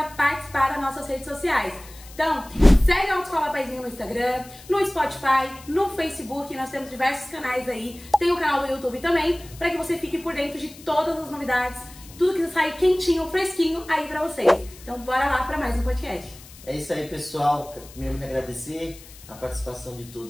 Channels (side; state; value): left; noise; hiss, 20 dB below the sound